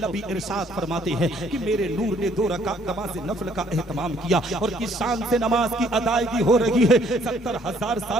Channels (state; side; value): normal; both; correlation 0.64